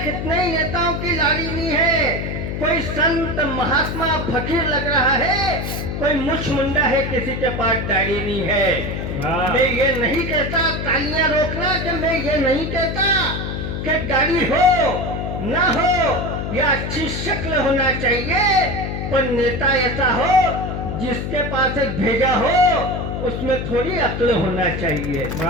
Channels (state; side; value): noise; left; hum, 4 dB below the sound